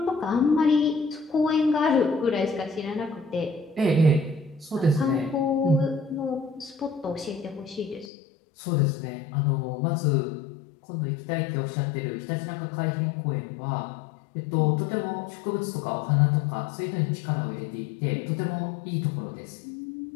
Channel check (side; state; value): right; drops out; at 8.1 s